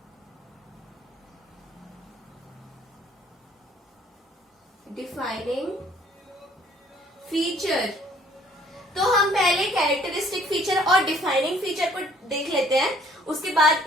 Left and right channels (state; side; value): normal; both; correlation 0.59